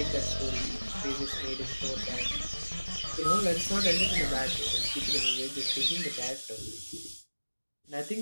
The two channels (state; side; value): inverted; both; correlation -1.00